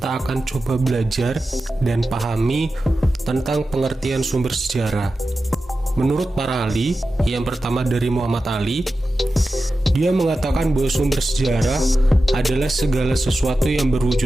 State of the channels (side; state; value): both; normal; correlation 0.93